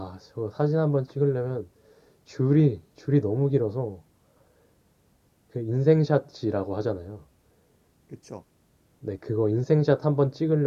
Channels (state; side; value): identical; both; correlation 1.00